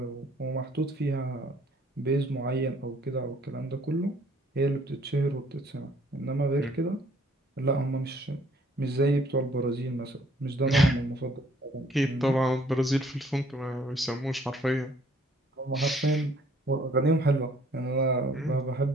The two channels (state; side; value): normal; both; correlation 0.60